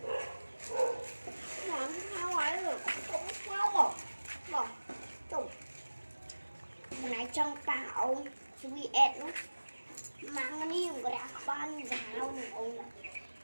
làm sao ấy rồi cũng sao mà tụng một này trong tạo sweet nó mang cái này một cái ban giáo này ông nó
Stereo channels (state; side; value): inverted; both; correlation -1.00